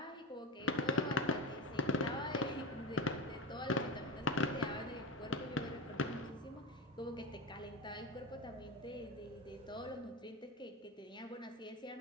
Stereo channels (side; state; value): both; normal; correlation 0.23